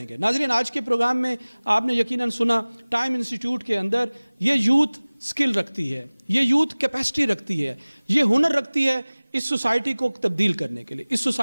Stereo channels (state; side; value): inverted; both; correlation -1.00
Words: नाज़रीन, आज के प्रोग्राम में आपने यकीनन सुना, टाइम इंस्टीट्यूट के अंदर ये यूथ स्किल रखती है, ये यूथ कैपेसिटी रखती है, ये हुनर रखती है इस सोसाइटी को तब्दील करने के लिए, इस